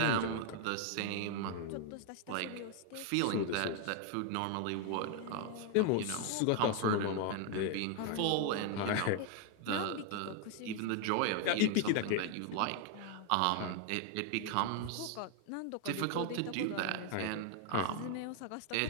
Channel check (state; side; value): different; both; correlation 0.01